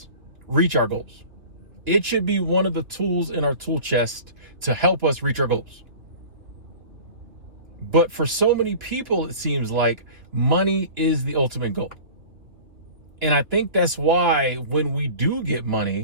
reach our goals. It should be one of the tools in our tool chest to help us reach our goals. But for so many people, it seems like money is the ultimate goal. And I think that's why when we do get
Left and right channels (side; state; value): left; late; 2.7 ms